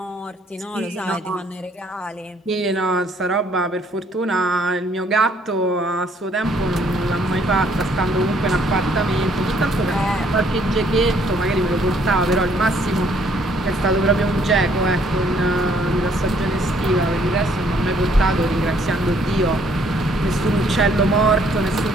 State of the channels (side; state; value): both; normal; correlation 0.65